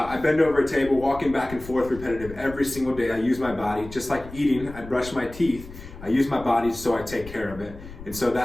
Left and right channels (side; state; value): left; noise; rumble, 15 dB below the sound